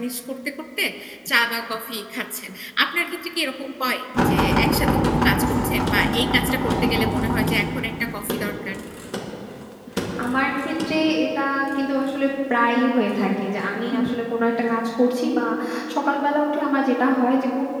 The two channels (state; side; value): identical; both; correlation 1.00